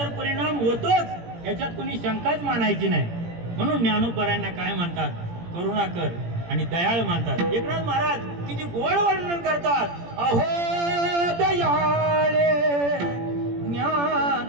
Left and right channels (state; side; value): late; left; 17 ms